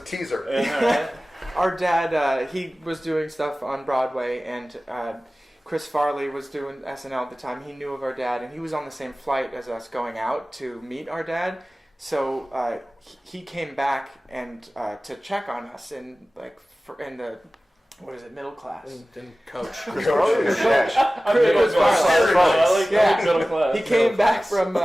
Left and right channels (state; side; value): normal; both; correlation 0.97